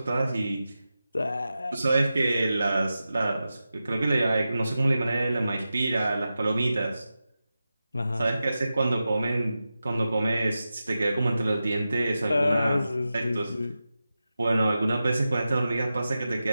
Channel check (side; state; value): both; inverted; correlation -0.92